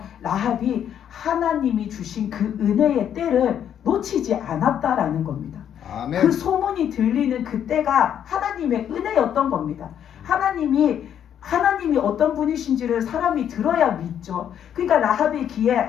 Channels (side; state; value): right; quieter; 9.4 dB